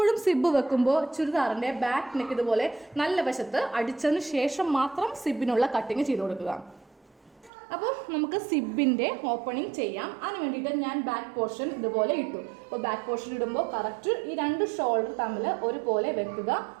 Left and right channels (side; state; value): left; drops out; at 7.5 s